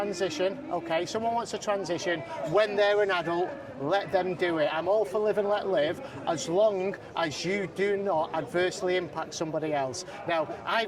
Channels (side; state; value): both; identical; correlation 1.00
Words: okay, someone wants to transition when they're an adult, let them do it. I'm all for live and let live, as long as you do not adversely impact somebody else. Now,